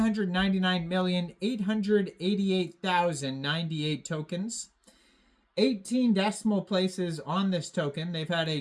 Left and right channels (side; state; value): both; identical; correlation 1.00